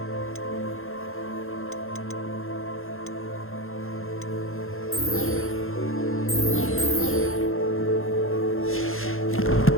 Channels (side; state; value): right; late; 0.61 ms